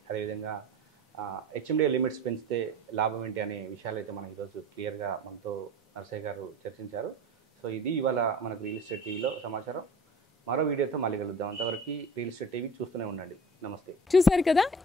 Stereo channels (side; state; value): both; normal; correlation 0.41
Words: అదేవిధంగా హెచ్ఎండిఏ లిమిట్స్ పెంచితే లాభం ఏంటి అనే విషయాలు అయితే మనం ఈరోజు క్లియర్గా మనతో నర్సయ్య గారు చర్చించారు. సో ఇది ఇవాళ మనకు రియల్ ఎస్టేట్ టీవీలో సమాచారం. మరో వీడియోతో మళ్ళీ కలుద్దాం. అంతవరకు రియల్ ఎస్టేట్ టీవీ చూస్తూనే ఉండండి. నమస్తే. చూసారు కదా,